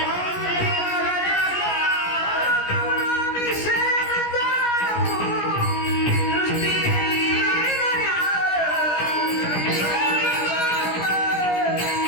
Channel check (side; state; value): right; late; 17 ms